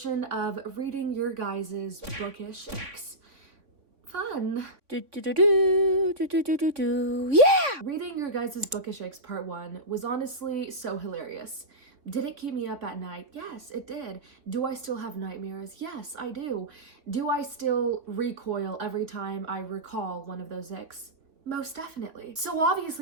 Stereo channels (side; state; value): left; late; 3.6 ms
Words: of reading your guys' bookish icks. Fun. Yeah! Reading your guys' bookish icks part 1 was honestly so hilarious. Did it keep me up at night? Yes, it did. Do I still have nightmares? Yes, I do. Do I still recoil every time I recall one of those icks? Most definitely. So